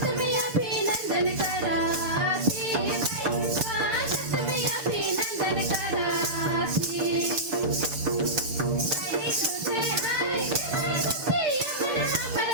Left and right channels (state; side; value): late; left; 6.9 ms